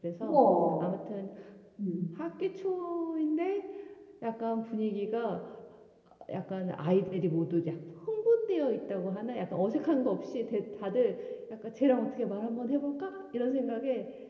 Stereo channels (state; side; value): identical; both; correlation 1.00